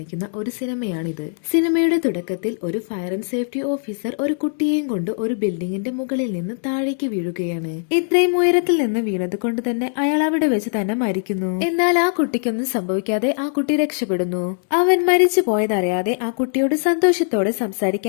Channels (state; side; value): silent; right; digital silence